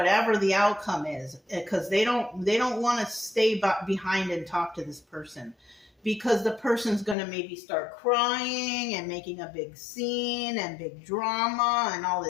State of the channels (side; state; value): right; drops out; at 7.2 s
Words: the outcome is, because they don't want to stay behind and talk to this person, because the person's going to maybe start crying and making a big scene and big drama and all